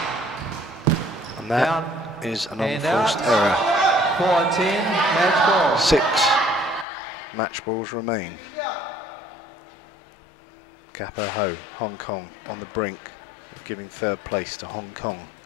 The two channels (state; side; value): drops out; right; at 6.9 s